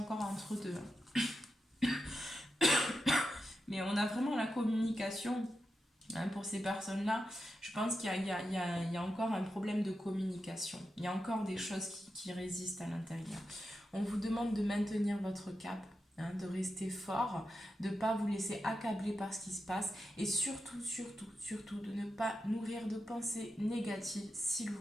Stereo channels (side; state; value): both; normal; correlation 0.89